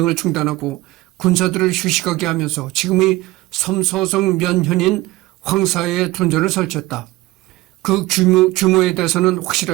중단하고 군사들을 휴식하게 하면서 지금의 섬서성 면현인 황사에 둔전을 설치했다. 그 규모에 대해서는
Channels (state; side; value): quieter; left; 19.2 dB